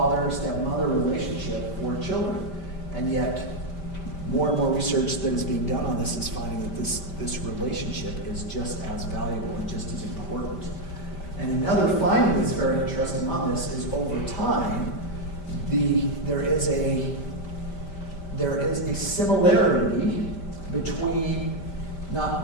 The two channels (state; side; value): late; right; 5.1 ms